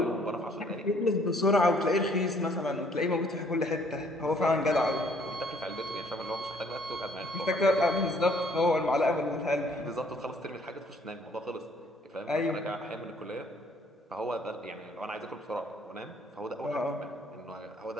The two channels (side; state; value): both; normal; correlation 0.62